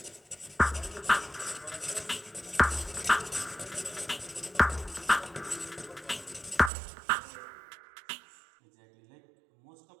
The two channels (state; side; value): drops out; left; at 6.7 s